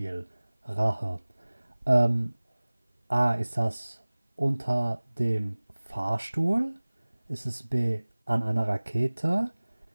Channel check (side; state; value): both; inverted; correlation -1.00